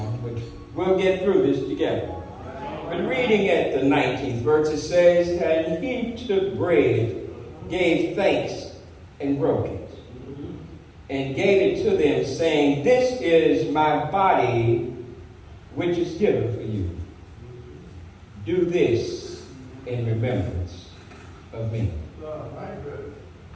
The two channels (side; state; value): both; identical; correlation 1.00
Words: But we'll get through this together. But reading at the 19th verse, it says, "And he took bread, gave thanks, and broke it, and gave it to them, saying, This is my body, which is given for you. Do this in remembrance of me."